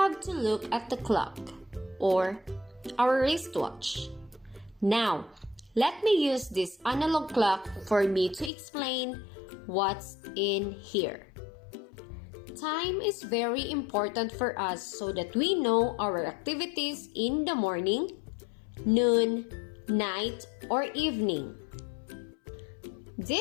to look at the clock or our wristwatch. Now, let me use this analog clock for me to explain what's in here. Time is very important for us so that we know our activities in the morning, noon, night, or evening.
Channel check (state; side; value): drops out; right; at 8.5 s